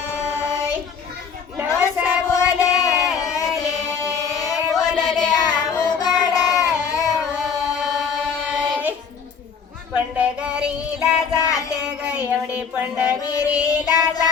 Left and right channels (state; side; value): quieter; right; 6.3 dB